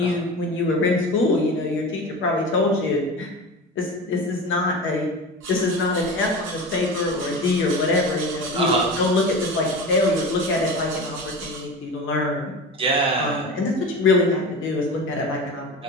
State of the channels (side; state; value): both; normal; correlation 0.30